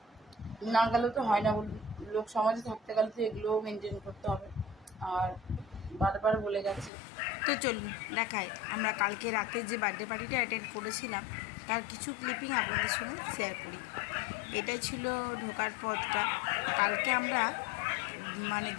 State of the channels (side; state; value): right; drops out; at 6.9 s